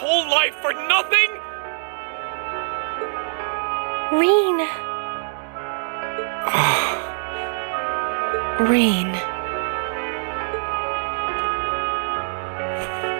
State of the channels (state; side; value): silent; left; digital silence